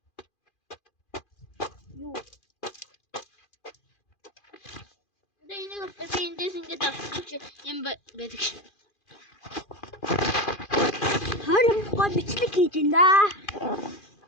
Юу? Анда энийг би эндээс ингэж авчих юм байдаг. Харин гоо бичлэг хийж ин да.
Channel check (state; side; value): late; right; 2.4 ms